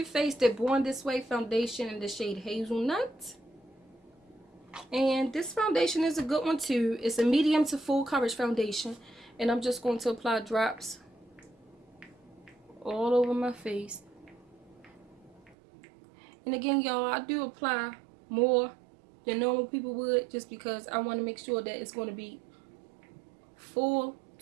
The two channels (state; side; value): drops out; left; at 15.6 s